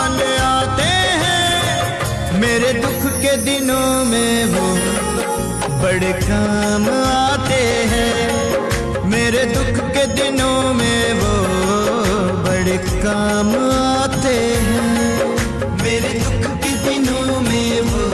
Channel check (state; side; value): identical; both; correlation 1.00